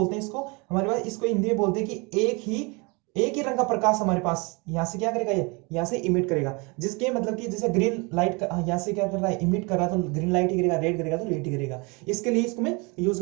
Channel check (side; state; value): left; quieter; 28.9 dB